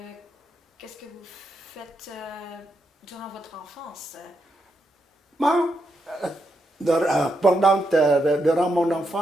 qu'est-ce que vous faites durant votre enfance? Bon, durant mon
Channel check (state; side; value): normal; both; correlation 0.82